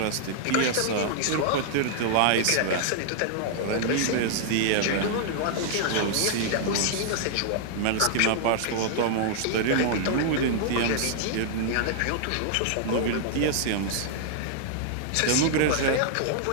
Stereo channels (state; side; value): different; both; correlation -0.01